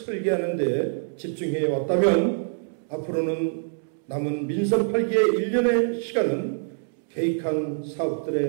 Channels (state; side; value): silent; left; 62 dB below the other